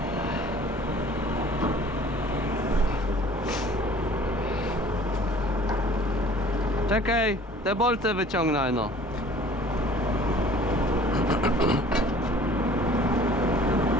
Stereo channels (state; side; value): normal; both; correlation 0.50